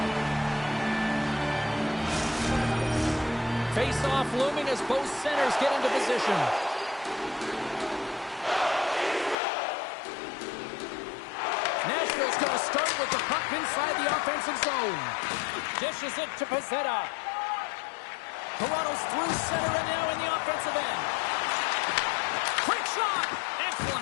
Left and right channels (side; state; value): right; drops out; at 9.3 s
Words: Face-off looming as both centers get into position. Nashville's going to start with the puck inside the offensive zone. Dishes it to Pezzetta. Toronto's through center and now in the offensive end. Quick shot! Excellent